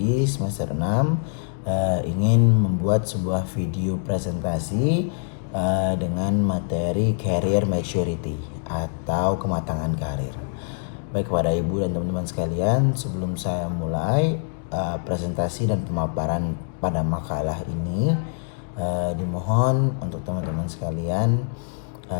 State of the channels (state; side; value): silent; right; digital silence